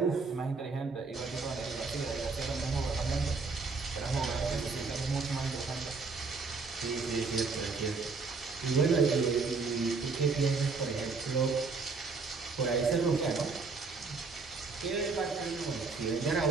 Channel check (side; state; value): left; quieter; 4.3 dB